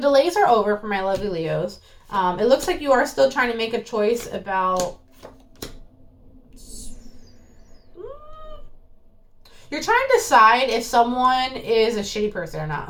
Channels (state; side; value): identical; both; correlation 1.00